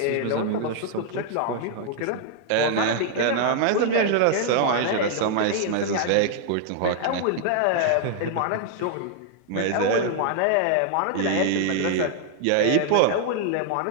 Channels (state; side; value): different; both; correlation 0.00